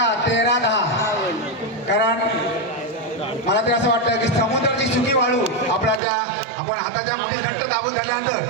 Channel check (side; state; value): left; drops out; at 6.0 s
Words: 13-10. कारण मला तरी असं वाटतं की समुद्राची सुकी वाळू आपण हाताच्या मध्ये घट्ट दाबून धरल्यानंतर